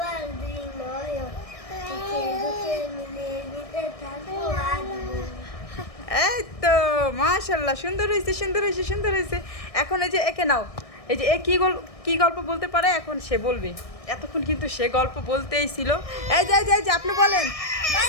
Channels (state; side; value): late; right; 1.6 ms